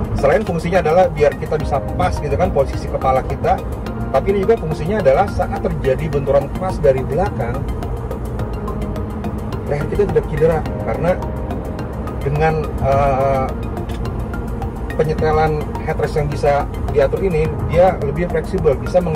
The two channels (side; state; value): both; identical; correlation 1.00